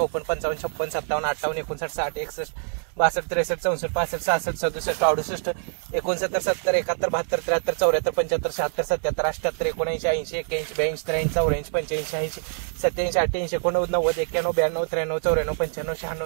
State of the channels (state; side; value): silent; left; 62 dB below the other